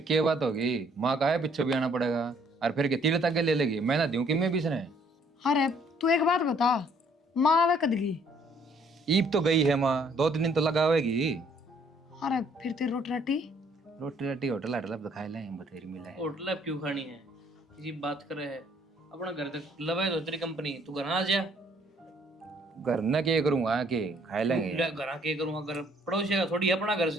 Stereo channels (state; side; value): normal; both; correlation 0.63